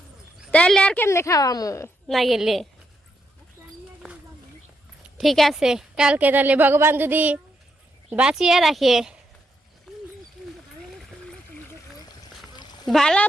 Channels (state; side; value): normal; both; correlation 0.80